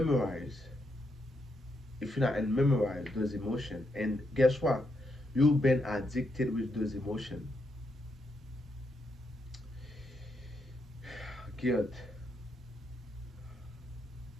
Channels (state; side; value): normal; both; correlation 0.80